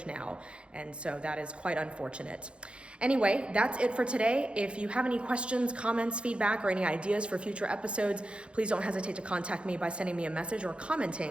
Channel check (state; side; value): late; left; 0.058 ms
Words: now, and so that is quite unfortunate. Anyway, that's it for today. If you have any questions, comments, feedback, or any ideas for future episodes, please don't hesitate to contact me by sending me a message or